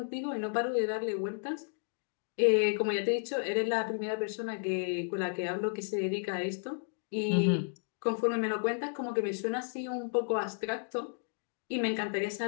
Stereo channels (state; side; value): silent; right; digital silence